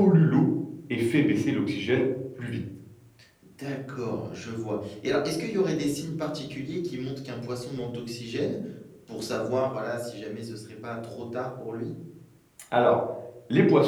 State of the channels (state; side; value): identical; both; correlation 1.00